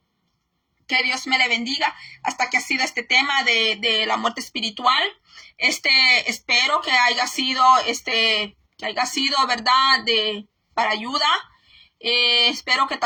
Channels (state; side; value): identical; both; correlation 1.00